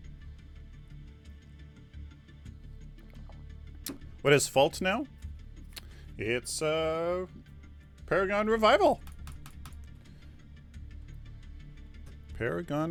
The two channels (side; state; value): both; identical; correlation 1.00